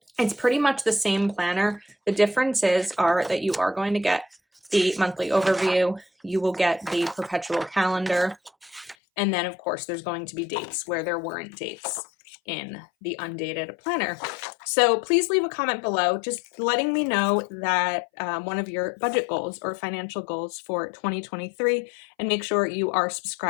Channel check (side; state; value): right; drops out; at 9.0 s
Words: It's pretty much the same planner. The differences are that you are going to get the monthly overview, you will get the perpetual calendar, and then of course there's going to be dates where there weren't dates in the undated planner. So please leave a comment below just letting me know that one of your budget goals or financial goals for 2023, and make sure you are